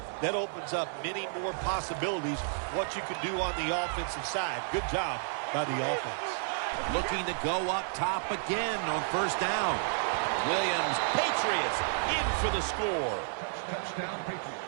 that opens up many more possibilities what you can do on the offensive side. Good job by the offense. Looking to go up top again on first down. Williams, Patriots, in for the score.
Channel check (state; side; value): silent; left; 57 dB below the other